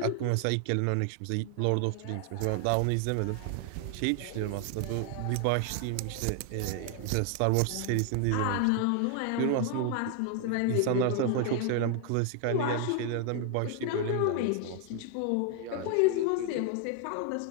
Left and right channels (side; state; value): both; different; correlation 0.00